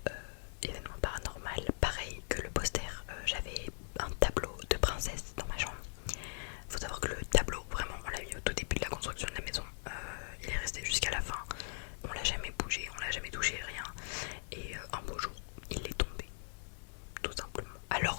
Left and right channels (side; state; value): right; silent; digital silence